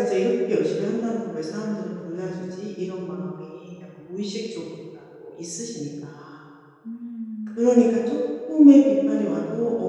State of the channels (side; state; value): both; identical; correlation 1.00